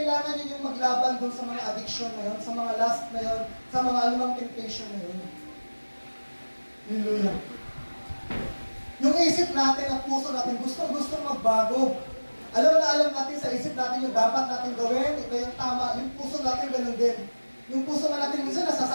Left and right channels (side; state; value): both; inverted; correlation -1.00